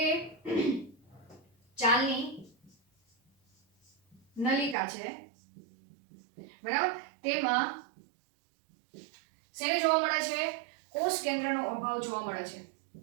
ચાલની નલિકા છે, બરાબર, તેમાં શેને જોવા મળે છે? કોષ કેન્દ્રનો અભાવ જોવા મળે છે.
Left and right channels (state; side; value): drops out; left; at 4.8 s